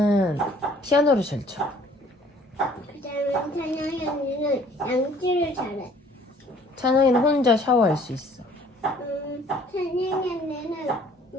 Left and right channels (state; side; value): normal; both; correlation 0.56